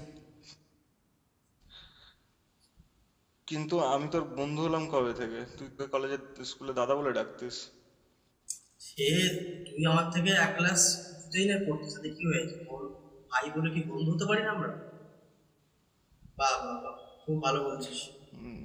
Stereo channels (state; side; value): identical; both; correlation 1.00